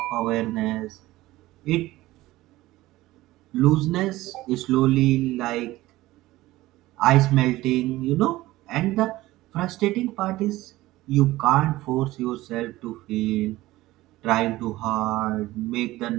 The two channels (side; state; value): left; quieter; 17.5 dB